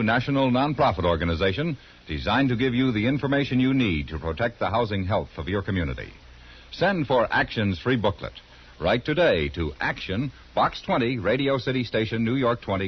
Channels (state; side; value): identical; both; correlation 1.00